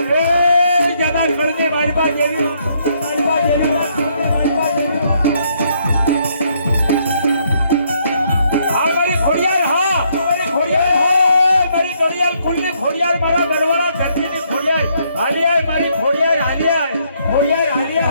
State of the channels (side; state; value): both; inverted; correlation -0.71